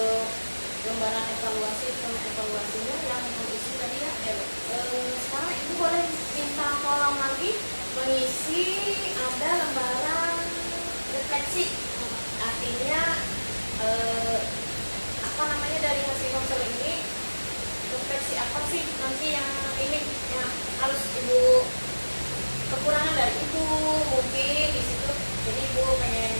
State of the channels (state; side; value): inverted; both; correlation -1.00